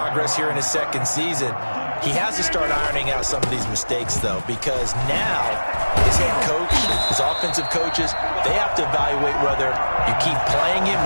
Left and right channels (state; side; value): inverted; both; correlation -1.00